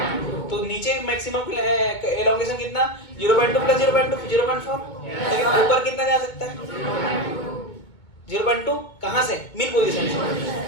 तो नीचे मैक्सिमम एलोंगेशन कितना? 0.2 प्लस 0.2 0.4। लेकिन ऊपर कितना जा सकता है? 0.2 कहाँ से? मिन पोजीशन से।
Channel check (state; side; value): late; right; 2.2 ms